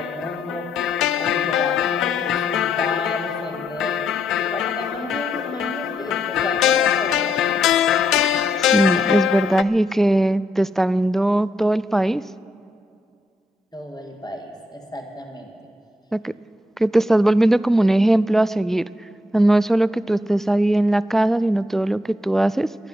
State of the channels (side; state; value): both; normal; correlation 0.78